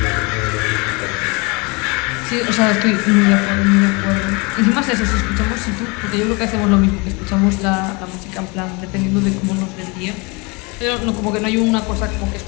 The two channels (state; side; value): quieter; right; 28.4 dB